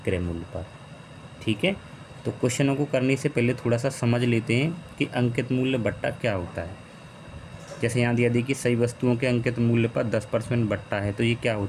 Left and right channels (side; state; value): both; identical; correlation 1.00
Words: मूल्य पर। ठीक है, तो क्वेश्चनों को करने से पहले थोड़ा सा समझ लेते हैं कि अंकित मूल्य बट्टा क्या होता है। जैसे यहाँ दिया देखिए, सही वस्तुओं के अंकित मूल्य पर 10% बट्टा है, तो ये क्या